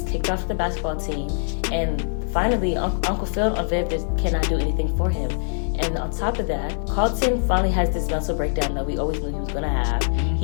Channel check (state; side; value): silent; right; digital silence